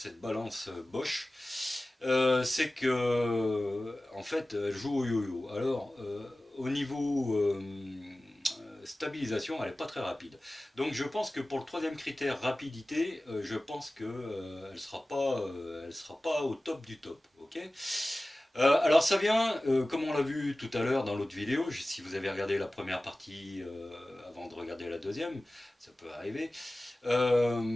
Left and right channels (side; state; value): both; normal; correlation 0.97